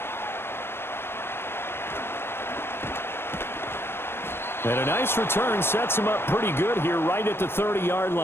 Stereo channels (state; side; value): late; right; 0.11 ms